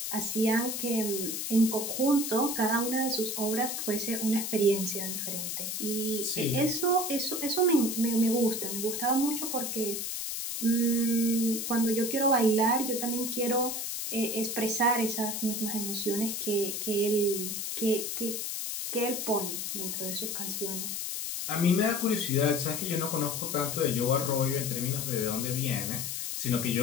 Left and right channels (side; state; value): left; noise; hiss, 3 dB below the sound